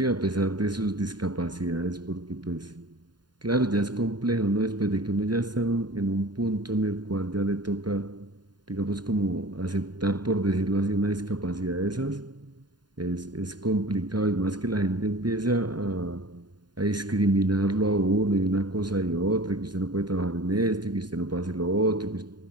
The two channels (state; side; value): late; left; 0.70 ms